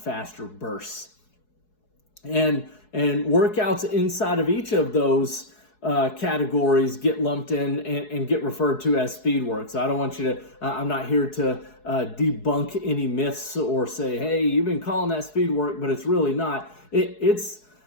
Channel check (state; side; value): late; right; 4.7 ms